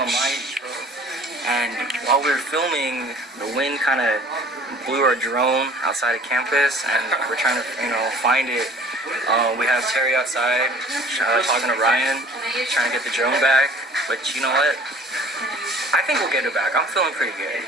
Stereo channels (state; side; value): normal; both; correlation 0.50